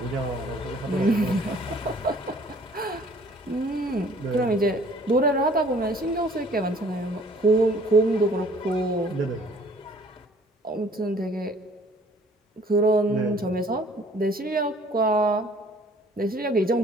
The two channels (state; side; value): normal; both; correlation 0.56